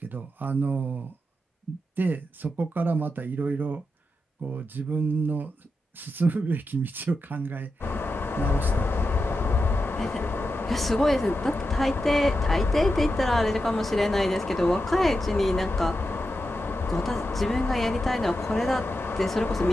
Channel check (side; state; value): both; normal; correlation 0.88